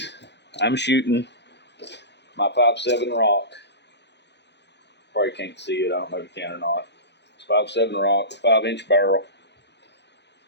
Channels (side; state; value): right; late; 0.50 ms